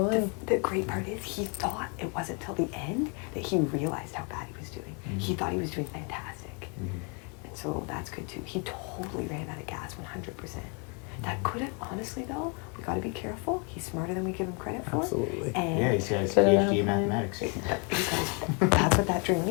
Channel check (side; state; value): right; quieter; 34.2 dB